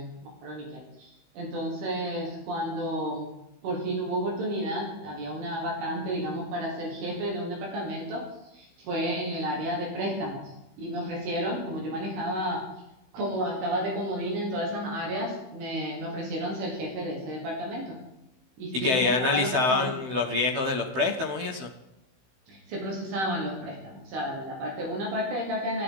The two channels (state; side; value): late; left; 16 ms